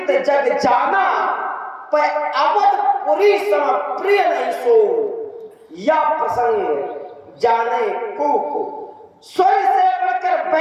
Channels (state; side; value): identical; both; correlation 1.00